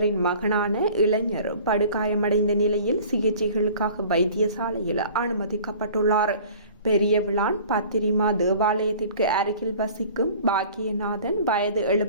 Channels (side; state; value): both; inverted; correlation -0.47